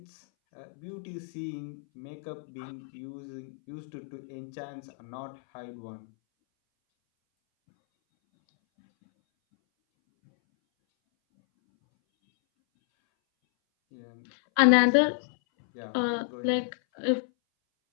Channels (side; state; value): right; silent; 58 dB below the other